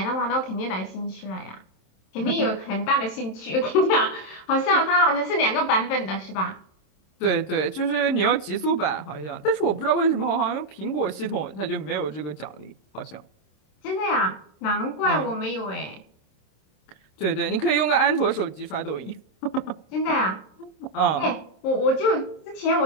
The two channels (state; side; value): late; right; 27 ms